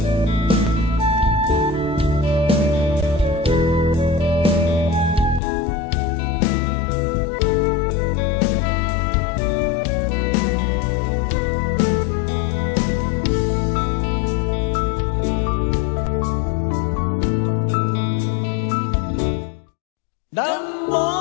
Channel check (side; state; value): right; drops out; at 5.4 s